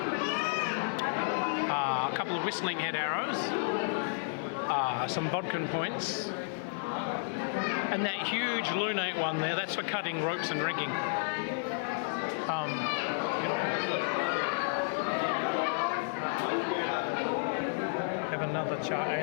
A couple of whistling head arrows. Some bodkin points. And that huge lunate one there, that's for cutting ropes and rigging. Have another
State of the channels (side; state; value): right; silent; 57 dB below the other